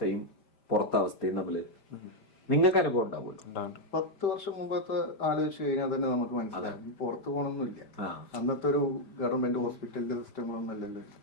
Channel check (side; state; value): right; late; 5.0 ms